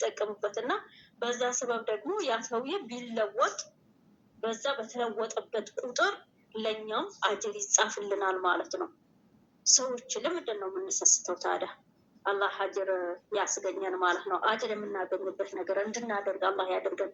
በዛ ሰበብ ደግሞ ያ ሰውዬ ቢለወጥ በዛ በተለወጠበት ቁጥር ለኛም አጅር ይጻፍልናል ማለት ነው። ሰዎች ለምንድን ነው የምንሰስተው ታዲያ? አላህ አጅር ያስገኘን ማለት ነው። አጅር የምናገኝበት ነገር እንድናደርግ አላህ ያደርገን።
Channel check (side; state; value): both; identical; correlation 1.00